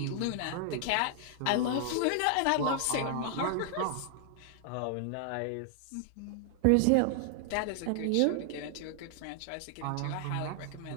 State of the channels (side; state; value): both; different; correlation 0.00